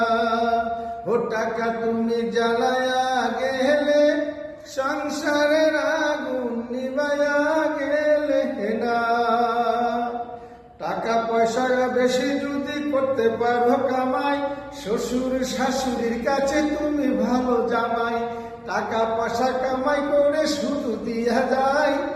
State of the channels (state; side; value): identical; both; correlation 1.00